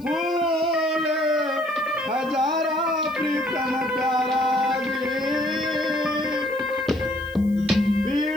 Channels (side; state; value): left; noise; hiss, 27 dB below the sound